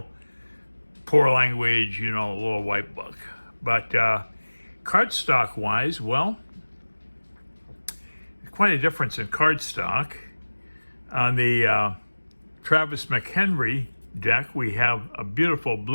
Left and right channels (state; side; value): inverted; both; correlation -1.00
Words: poor language, a little white book. But cardstock wise, well, quite a difference in cardstock. On the Travis McHenry deck, we have a beautiful